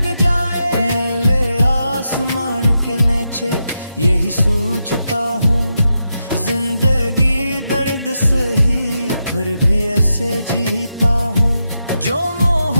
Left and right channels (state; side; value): inverted; both; correlation -0.86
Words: जाए। नीले आसमान के नीचे यही सोचता हूँ, जिंदगी दर्द सही फिर भी ऐसे जीता हूँ। जो